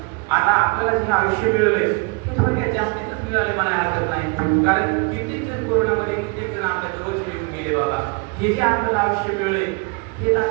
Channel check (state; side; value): quieter; left; 30.7 dB